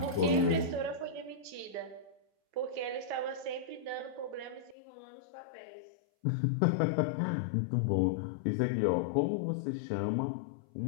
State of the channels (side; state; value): right; drops out; at 4.8 s